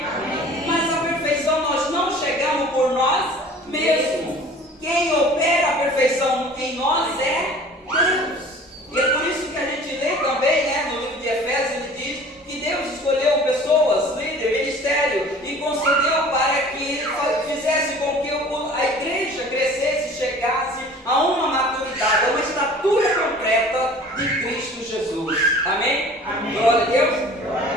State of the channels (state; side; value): normal; both; correlation 0.46